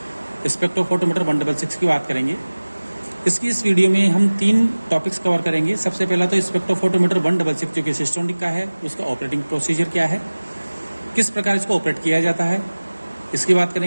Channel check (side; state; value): both; inverted; correlation -1.00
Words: स्पेक्ट्रोफोटोमीटर 166 की बात करेंगे। इसकी इस वीडियो में हम 3 टॉपिक्स कवर करेंगे। सबसे पहला तो स्पेक्ट्रोफोटोमीटर 166 जो कि सिस्टोनिक का है, उसका ऑपरेटिंग प्रोसीजर क्या है, किस प्रकार इसको ऑपरेट किया जाता है, इसकी बात